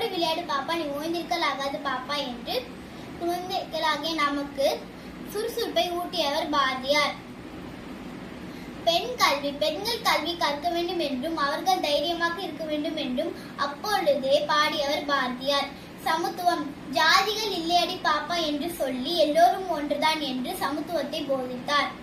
விளையாடு பாப்பா, நீ ஓய்ந்திருக்கல் ஆகாது பாப்பா என்று குழந்தைகளாகிய நமக்கு சுறுசுறுப்பை ஊட்டியவர் பாரதியார். பெண் கல்வி. பெண்கள் கல்வி கற்க வேண்டும் என்றும் அவர்கள் தைரியமாக இருக்க வேண்டும் என்றும் அப்பொழுதே பாடியவர் பாரதியார். சமத்துவம். ஜாதிகள் இல்லையடி பாப்பா என்று சொல்லி எல்லோரும் ஒன்றுதான் என்று சமத்துவத்தை போதித்தார்.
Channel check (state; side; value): identical; both; correlation 1.00